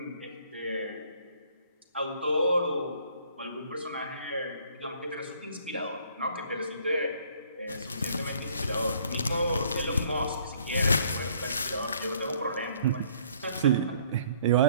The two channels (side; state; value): both; inverted; correlation -0.60